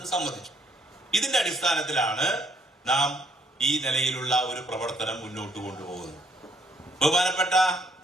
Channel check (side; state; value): both; normal; correlation 0.67